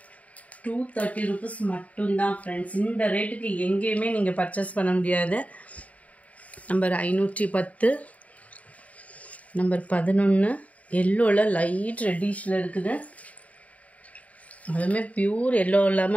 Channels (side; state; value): right; late; 0.069 ms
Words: 230 rupees மட்டும்தான் ஃப்ரெண்ட்ஸ். இந்த ரேட்டுக்கு எங்கேயுமே நீங்கள் பர்ச்சேஸ் பண்ண முடியாது. நம்பர் 510, நம்பர் 11, எல்லோவில் லைட் ரெட்டிஷில் இருக்குது. அதுவுமே பியூர் எல்லோ